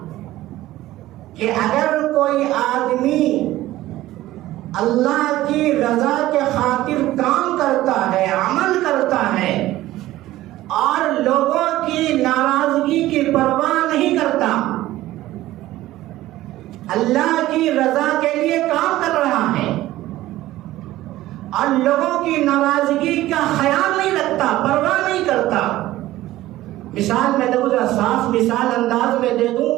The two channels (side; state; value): left; quieter; 15.7 dB